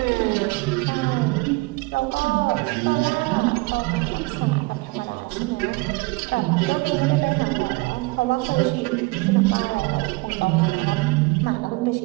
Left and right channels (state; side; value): quieter; left; 24.4 dB